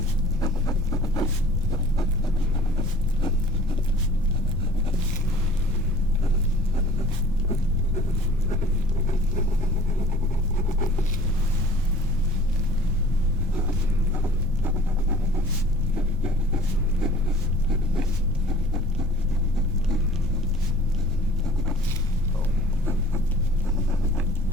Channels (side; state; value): both; normal; correlation 0.49